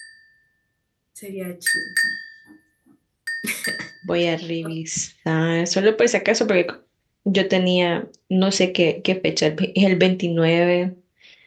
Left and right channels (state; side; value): identical; both; correlation 1.00